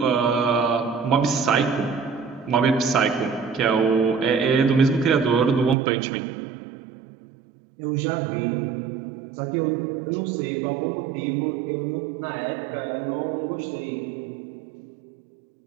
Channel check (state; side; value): drops out; left; at 5.8 s